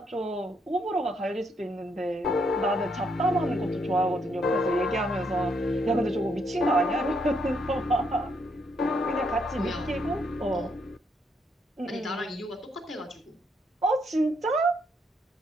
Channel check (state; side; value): normal; both; correlation 0.74